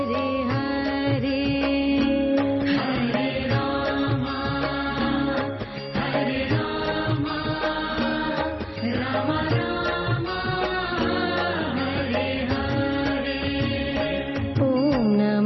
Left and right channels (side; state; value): both; identical; correlation 1.00